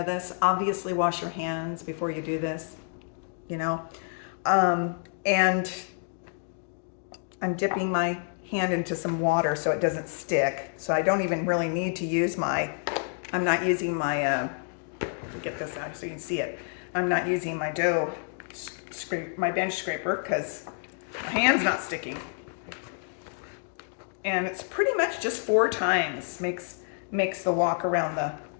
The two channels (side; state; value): right; silent; 59 dB below the other